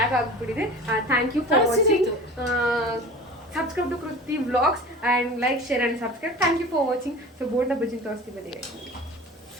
ಆಗಿಬಿಟ್ಟಿದೆ. Thank you for watching. Subscribe to Kruti Vlogs and like, share and subscribe. Thank you for watching. So bonda bajji ತೋರಿಸ್ತೀವಿ ಬನ್ನಿ.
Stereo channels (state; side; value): normal; both; correlation 0.38